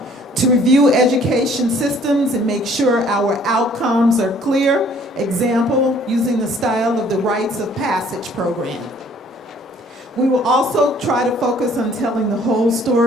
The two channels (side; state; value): both; normal; correlation 0.58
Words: To review education systems and make sure our outcomes are clear. Example, using the style of the Rites of Passage program. We will also try to focus on telling the whole